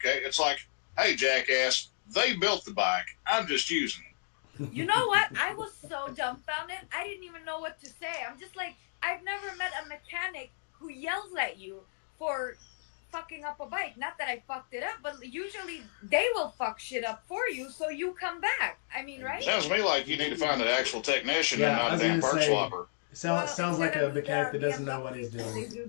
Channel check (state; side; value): silent; right; digital silence